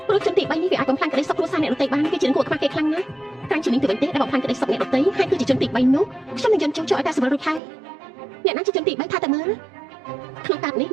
ព្រោះជនទី3នេះវាអាចបំផ្លាញក្តីសុខគ្រួសារអ្នកដទៃបានគឺជាគួរខ្វះគេខ្លាំងណាស់តាមជានាងទៅវិញទេដែលបំផ្លាញក្តីសុខអ្នកដទៃហើយគឺជាជនទី3នោះខ្ញុំនឹងយន្តជូរចូលឲ្យតែសម្រួលរួចហើយអ្នកណាជាជនទី3ថាតែមើលក្នុងកាតនេះ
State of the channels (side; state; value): left; drops out; at 7.6 s